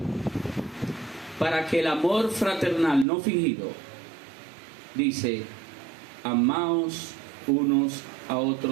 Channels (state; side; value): drops out; left; at 3.1 s